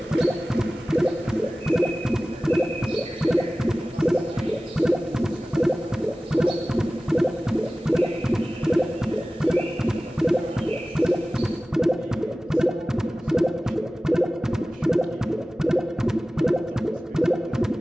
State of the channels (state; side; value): normal; both; correlation 0.96